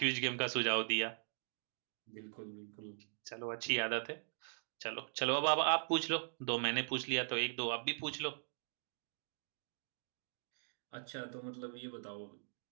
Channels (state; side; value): silent; left; digital silence